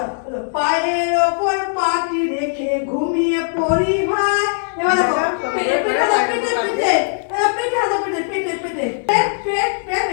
পায়ের ওপর পাটি রেখে ঘুমিয়ে পড়ি ভাই। এবার দেখো পেটে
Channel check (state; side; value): silent; right; digital silence